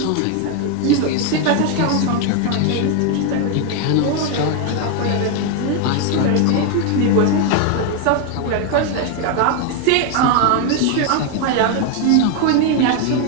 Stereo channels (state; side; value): different; both; correlation 0.01